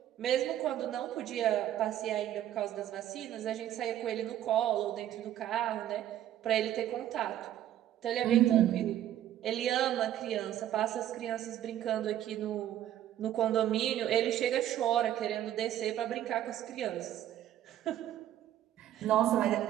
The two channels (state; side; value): quieter; left; 11.9 dB